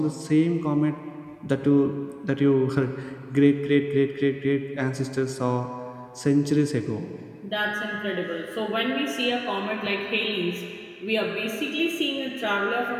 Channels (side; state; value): both; identical; correlation 1.00